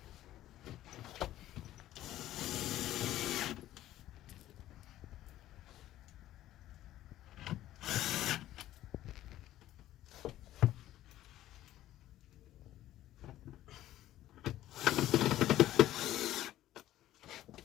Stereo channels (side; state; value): right; quieter; 13.8 dB